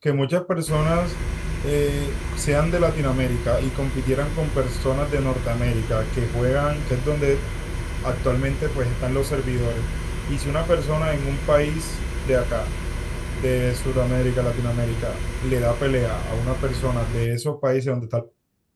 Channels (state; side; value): identical; both; correlation 1.00